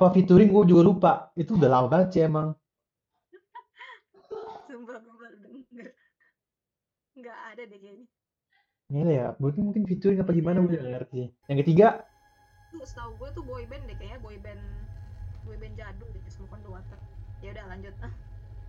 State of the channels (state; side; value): identical; both; correlation 1.00